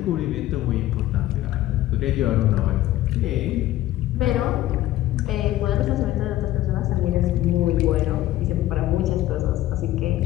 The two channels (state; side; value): quieter; right; 14.7 dB